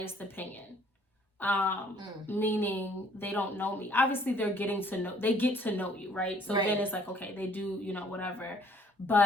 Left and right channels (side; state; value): both; normal; correlation 0.59